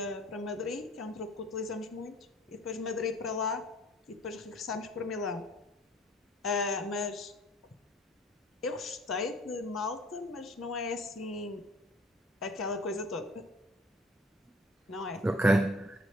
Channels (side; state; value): both; normal; correlation 0.52